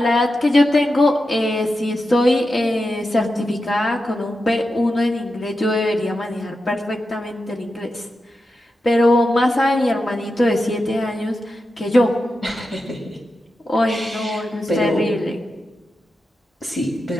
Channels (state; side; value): normal; both; correlation 0.90